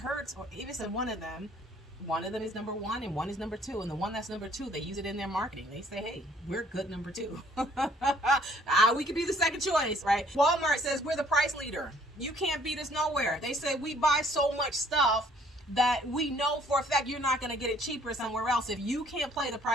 or Avis and one of them. One of them is number 1 and one is number 2. And the one that's number 2, they use it in their marketing. They say, hey, we're good number 2. We could be the second choice, right? Walmart says we're the price leader. You can't beat us nowhere. They say we buy so much stuff that we know for a fact you're not going to get it cheaper somewhere else. If you can't play the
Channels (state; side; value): normal; both; correlation 0.60